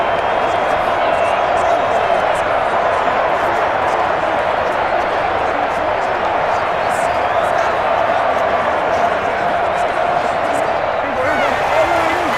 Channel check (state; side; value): identical; both; correlation 1.00